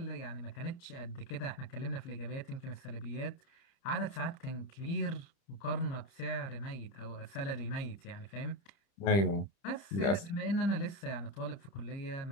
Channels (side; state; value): right; late; 30 ms